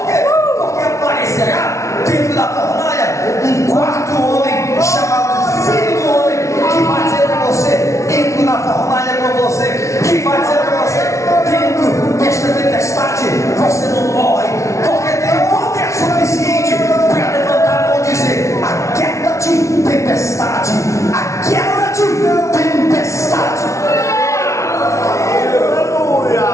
quê? Porque aparecerá dentro da fornalha um quarto homem chamado Filho do Homem, que vai dizer para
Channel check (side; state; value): right; late; 0.14 ms